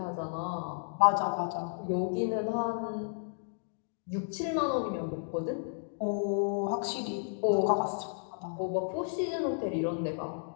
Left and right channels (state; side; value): silent; right; digital silence